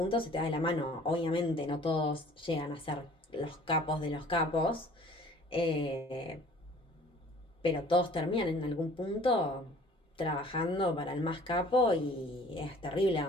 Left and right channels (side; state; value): both; normal; correlation 0.51